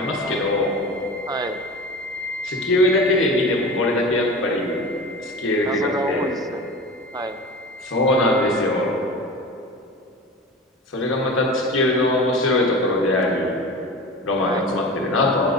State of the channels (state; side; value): normal; both; correlation 0.33